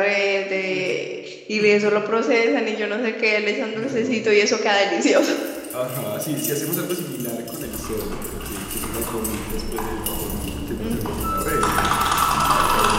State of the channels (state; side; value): identical; both; correlation 1.00